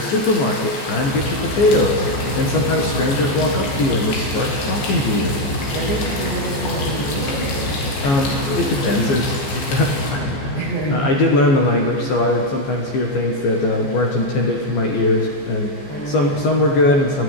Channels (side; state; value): right; late; 14 ms